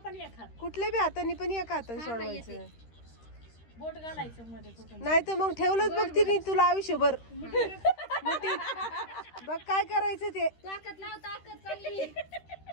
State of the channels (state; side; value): late; right; 13 ms